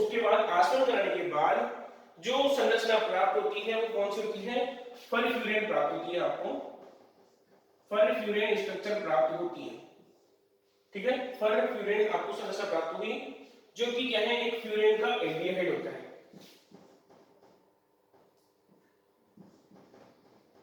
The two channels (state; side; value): identical; both; correlation 1.00